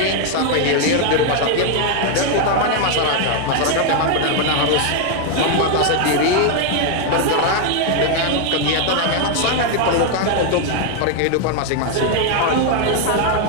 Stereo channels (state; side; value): different; both; correlation 0.01